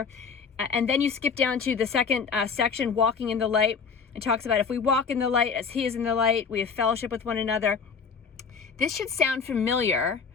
And then you skip down to the second section, walking in the light. It talks about if we walk in the light as he is in the light, we have fellowship with one another. This should sound familiar.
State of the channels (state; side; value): quieter; right; 5.7 dB